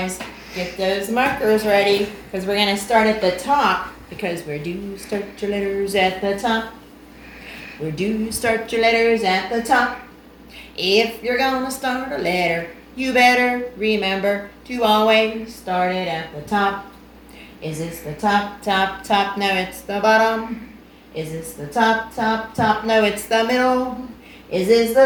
get those markers ready because we're going to start at the top because where do you start your letters at the top? Where do you start your letters at the top? If you're gonna start a letter, you better remember to always start it at the top. Is this the top, top, top? No, it's the bottom. Is this the top, top, top? No, it's the middle. Is this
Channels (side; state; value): both; identical; correlation 1.00